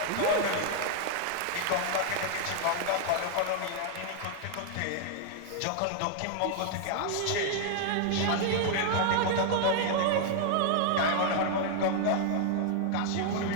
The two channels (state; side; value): different; both; correlation 0.00